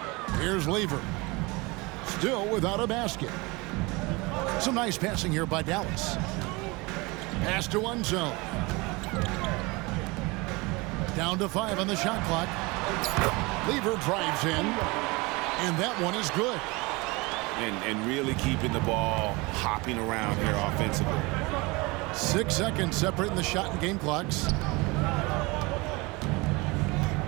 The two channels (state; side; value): quieter; left; 25.0 dB